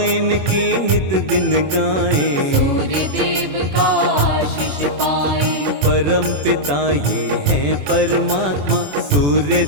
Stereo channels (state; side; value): late; left; 21 ms